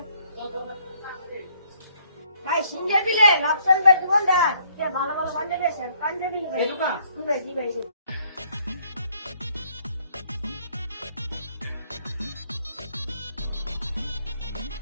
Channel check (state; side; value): inverted; both; correlation -0.66